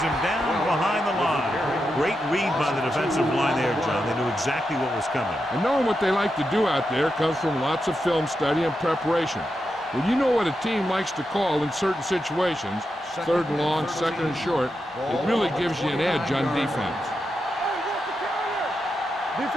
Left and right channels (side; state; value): both; normal; correlation 0.87